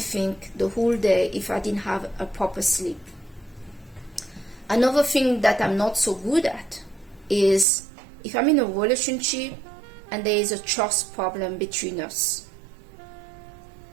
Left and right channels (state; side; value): drops out; left; at 7.7 s